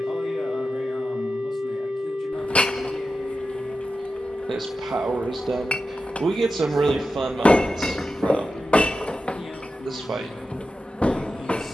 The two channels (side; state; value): both; normal; correlation 0.92